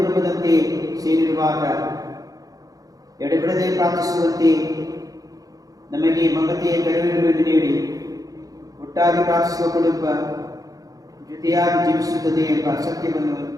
ಸೇರಿರುವಾಗ ಎಡೆಬಿಡದೆ ಪ್ರಾರ್ಥಿಸುವಂತೆ ನಮಗೆ ಮಮತೆಯ ಕರುಣೆಯನ್ನು ನೀಡಿ ಒಟ್ಟಾಗಿ ಪ್ರಾರ್ಥಿಸುವ ಕುಟುಂಬ ಜೊತೆಯಾಗಿ ಜೀವಿಸುತ್ತದೆ ಎಂಬ ಸತ್ಯವನ್ನು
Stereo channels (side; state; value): left; late; 0.17 ms